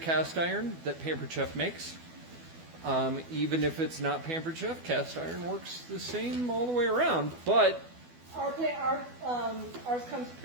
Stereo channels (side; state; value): left; late; 12 ms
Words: iron that Pampered Chef makes. Even if it's not Pampered Chef, cast iron works the same all the way around, but Ours comes